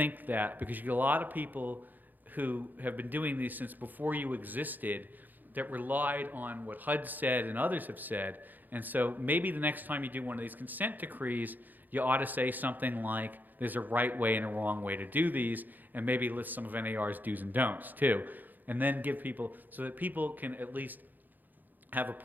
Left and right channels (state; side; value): late; left; 0.086 ms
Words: that, because you get a lot of people who have been doing these since before you existed that relied on what HUD said and others have said. And so maybe the next time you do one of these consent decrees, you ought to say something like, there's a right way and a wrong way to do these, and maybe list some of NAR's do's and don'ts too. And then give people, so that people can at least have